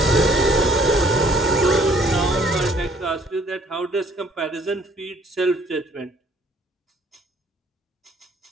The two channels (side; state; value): both; normal; correlation 0.60